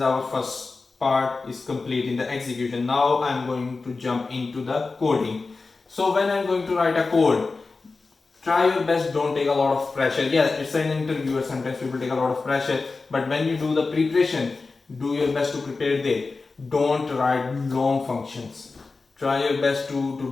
our first part is complete in the execution. Now I'm going to jump into the coding. So when I'm going to write a code, try your best, don't take a lot of pressure. Yeah, it's an interviewer, sometimes people take a lot of pressure, but when you do the preparation, do your best to prepare there. Don't write long functions. Try your best to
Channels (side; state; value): right; quieter; 4.0 dB